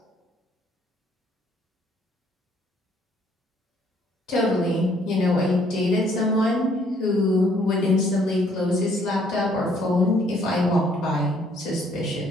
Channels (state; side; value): normal; both; correlation 0.65